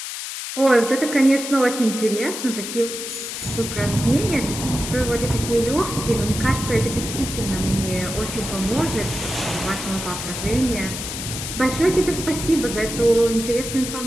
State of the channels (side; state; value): left; noise; hiss, 6 dB below the sound